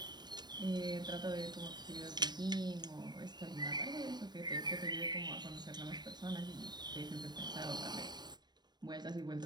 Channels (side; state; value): left; late; 0.21 ms